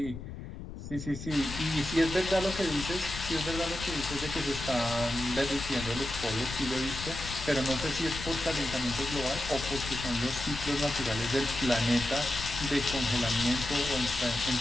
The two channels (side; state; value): left; noise; rumble, 10 dB below the sound